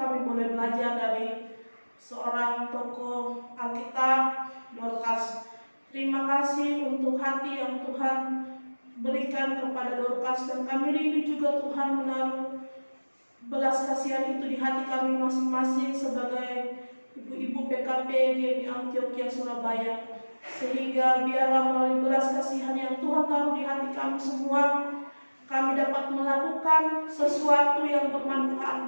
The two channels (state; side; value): inverted; both; correlation -1.00